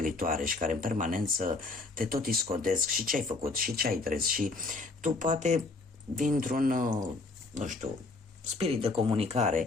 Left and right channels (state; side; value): quieter; right; 3.5 dB